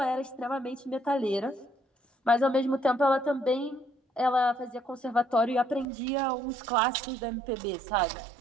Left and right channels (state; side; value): drops out; left; at 5.9 s